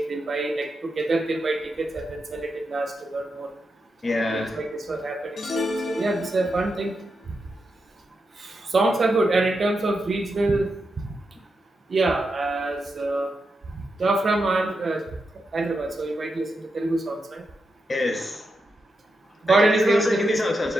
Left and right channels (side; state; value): both; normal; correlation 0.87